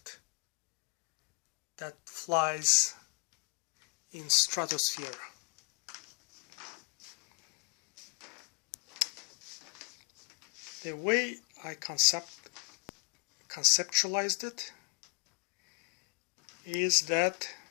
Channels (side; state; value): right; quieter; 33.2 dB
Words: that flies in stratosphere. The way I conceptualized it is that